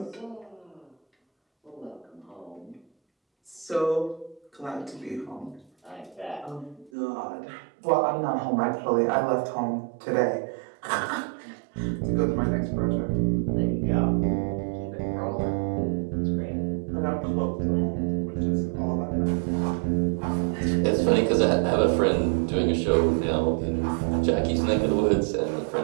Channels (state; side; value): drops out; left; at 6.9 s